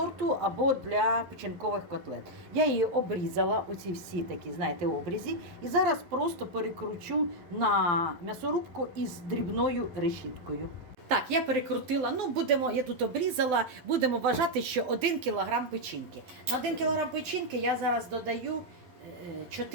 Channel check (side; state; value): left; late; 11 ms